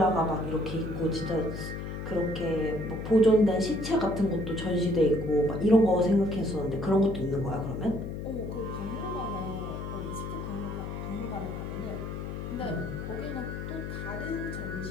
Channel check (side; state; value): left; noise; hum, 6 dB below the sound